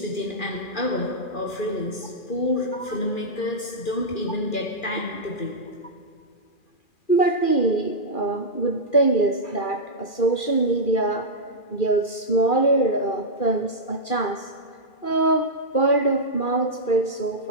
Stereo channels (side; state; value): right; late; 2.4 ms